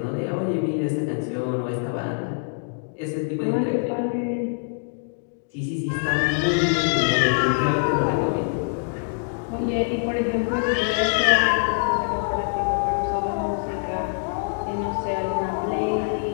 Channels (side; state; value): right; silent; digital silence